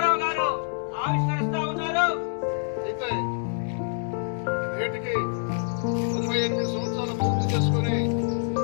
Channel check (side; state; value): right; silent; 59 dB below the other